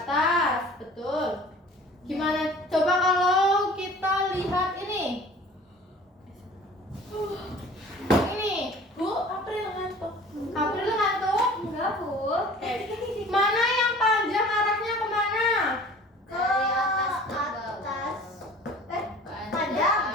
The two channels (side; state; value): both; normal; correlation 0.46